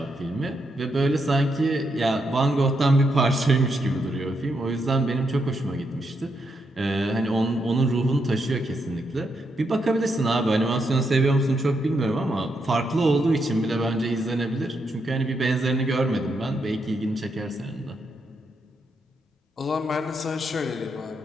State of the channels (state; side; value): normal; both; correlation 0.80